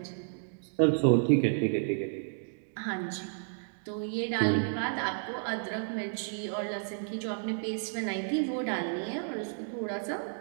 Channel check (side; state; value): left; silent; digital silence